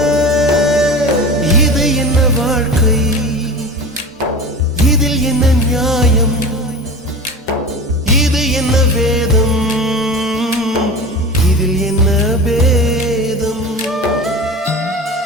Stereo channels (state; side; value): normal; both; correlation 0.32